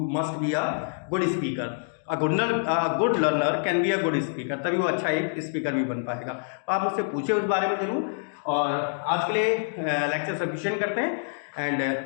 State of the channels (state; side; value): silent; right; digital silence